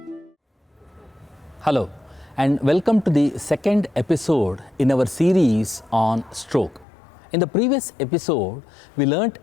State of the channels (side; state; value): right; drops out; at 6.9 s